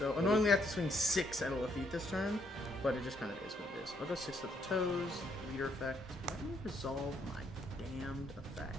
So what do annoyingly, I have to swing 6 at a Lafitte this turn, but it just kind of is what it is. I'll go 6 at the toes, leader effect. Let me resolve my damned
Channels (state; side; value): normal; both; correlation 0.71